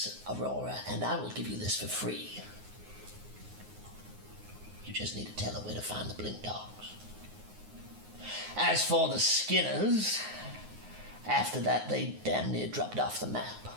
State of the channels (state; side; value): late; left; 9.5 ms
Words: Aurora, and I will give you this for free, you just need to tell her where to find the Blink Dogs. As for the Skinners, after that they damn near dropped off the map.